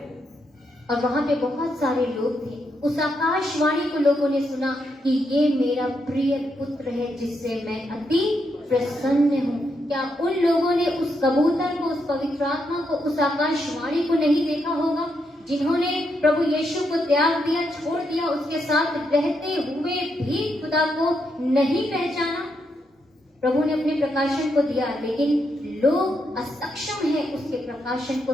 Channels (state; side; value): normal; both; correlation 0.80